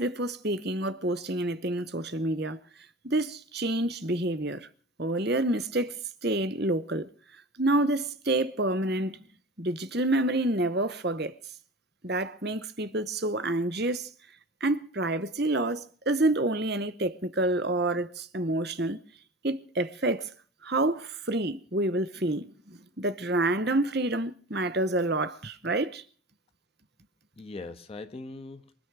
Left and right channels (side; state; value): both; normal; correlation 0.35